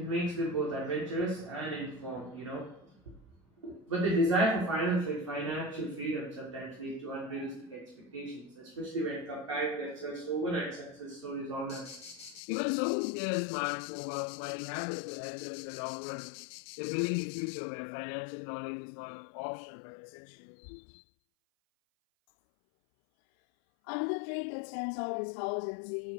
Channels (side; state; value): right; drops out; at 12.4 s